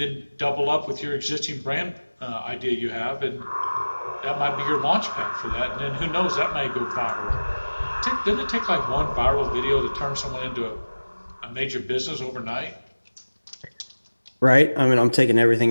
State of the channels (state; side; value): inverted; both; correlation -1.00